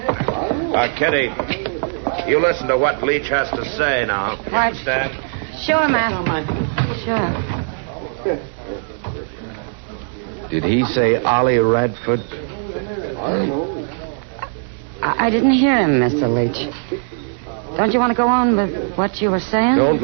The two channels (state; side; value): silent; left; 66 dB below the other